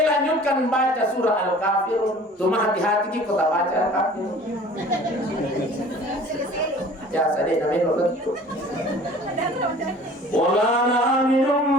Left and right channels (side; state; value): both; normal; correlation 0.47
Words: baca surah Al-Kafirun. Cuma hati-hati kita baca Al-Kafirun. Ya sadar namanya begitu. Wala